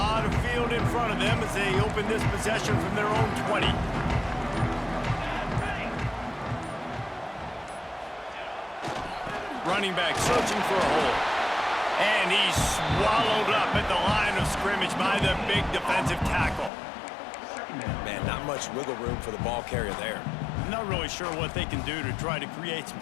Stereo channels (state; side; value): drops out; right; at 16.7 s